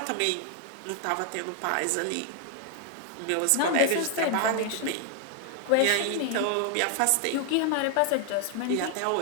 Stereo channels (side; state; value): both; different; correlation 0.00